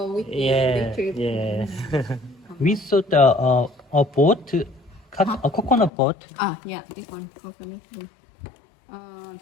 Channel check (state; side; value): drops out; right; at 5.9 s